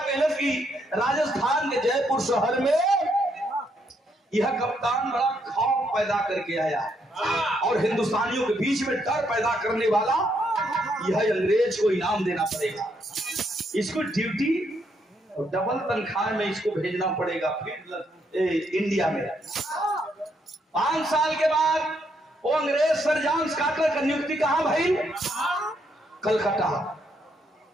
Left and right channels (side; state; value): both; normal; correlation 0.75